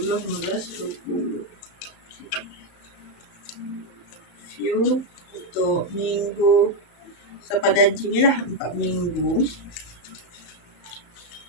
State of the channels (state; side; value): late; right; 34 ms